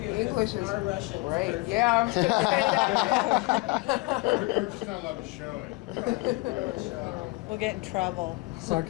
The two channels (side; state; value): right; quieter; 24.3 dB